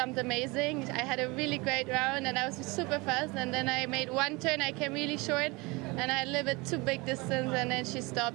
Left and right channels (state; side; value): quieter; left; 25.2 dB